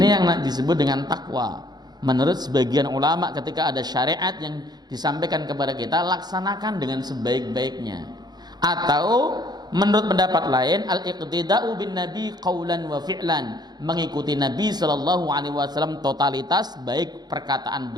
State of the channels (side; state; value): left; late; 0.20 ms